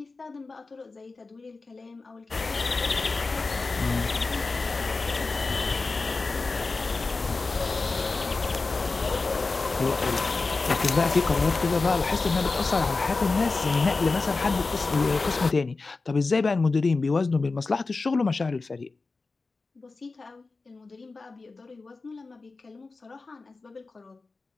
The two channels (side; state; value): right; quieter; 3.8 dB